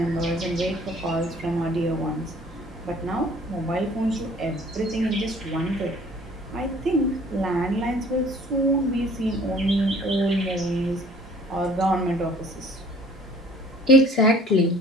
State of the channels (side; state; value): both; normal; correlation 0.53